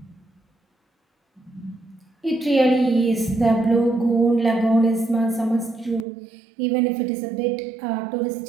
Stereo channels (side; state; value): left; drops out; at 6.1 s